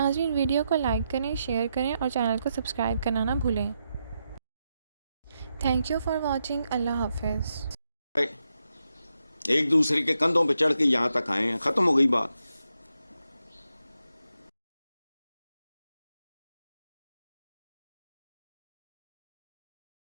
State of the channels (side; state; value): both; inverted; correlation -0.85